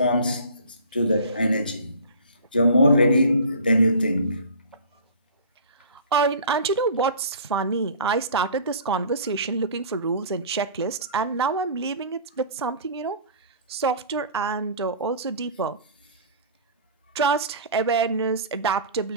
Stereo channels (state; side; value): inverted; both; correlation -0.42